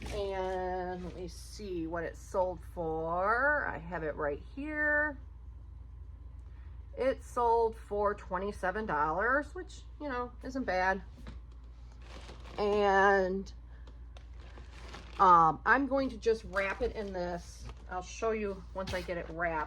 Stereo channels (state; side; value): identical; both; correlation 1.00